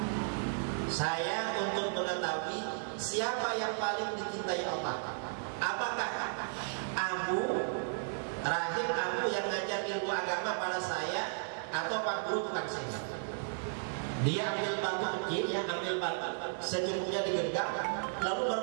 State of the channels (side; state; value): left; silent; digital silence